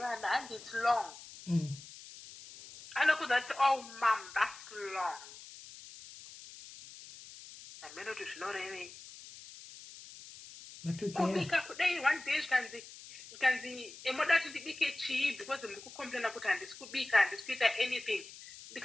and it's long anokuza kuti oh mam that's long amenoti zvinorevei kubika kudai one day zvikanzi emoda kuti ndibike chii because muri kucomplaina kuti handisi kubika handisi kuita anything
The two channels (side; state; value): left; noise; hiss, 16 dB below the sound